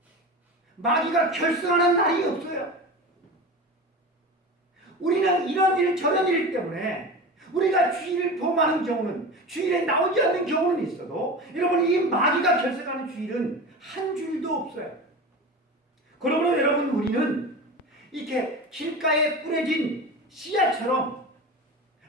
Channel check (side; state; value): both; normal; correlation 0.29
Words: 마귀가 결승하는 날이 없어요. 우리는 이런 일 저런 일 때문에 우리가 주일을 범하는 경우는, 주일에 나오지 않는 경우는 있어도 여러분 이 마귀가 결석하는 주일은 한 주일도 없어요. 그러므로 여러분 우리는 이렇게 길가에 뿌려진 씨앗처럼